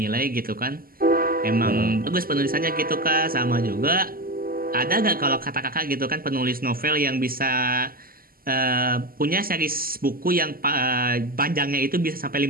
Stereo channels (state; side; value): late; left; 0.42 ms